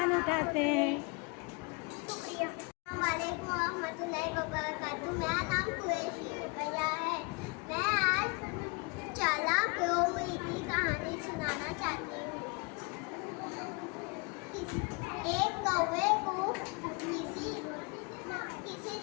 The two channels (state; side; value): quieter; right; 31.5 dB